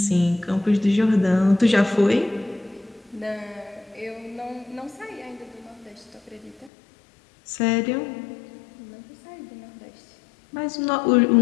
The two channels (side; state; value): right; drops out; at 6.7 s